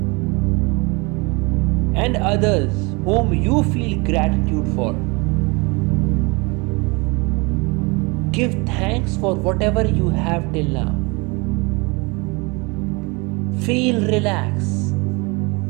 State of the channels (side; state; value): left; quieter; 27.7 dB